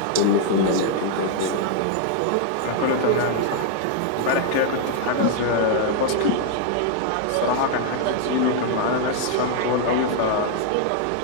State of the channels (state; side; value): different; both; correlation 0.00